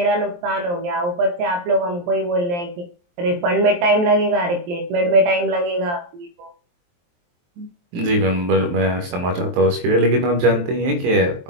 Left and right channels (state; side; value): late; left; 23 ms